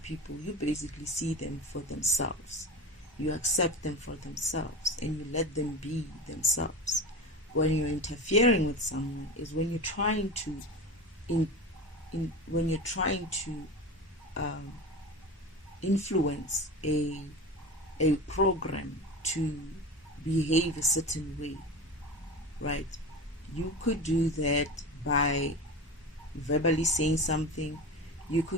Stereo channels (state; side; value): normal; both; correlation 0.28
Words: you basically see them for themselves. You accept them for themselves, and you let them be themselves. When you're interfering with someone is when you're trying to influence a program to behave a certain way, right? You could do that by verbally saying something. You